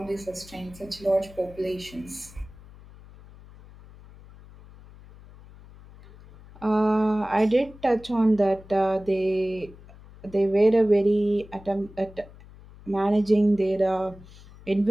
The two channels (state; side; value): noise; left; hum, 21 dB below the sound